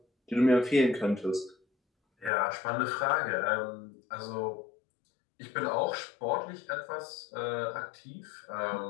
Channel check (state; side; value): drops out; right; at 2.3 s